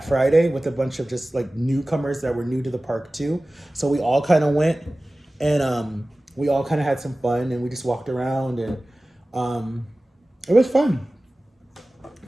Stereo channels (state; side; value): normal; both; correlation 0.97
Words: Friday with a bunch of just like newcomers that were new to the park too. So we all kind of went and we all kind of had some fun and we just walked around and it was fun.